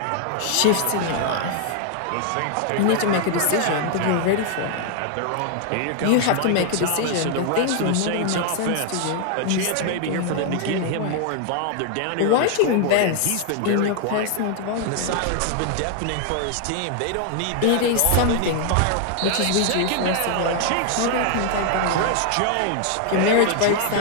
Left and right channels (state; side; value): different; both; correlation 0.00